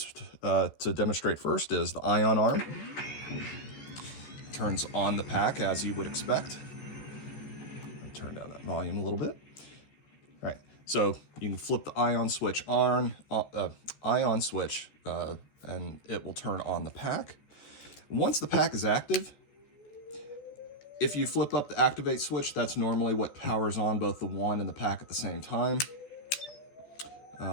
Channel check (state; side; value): late; right; 14 ms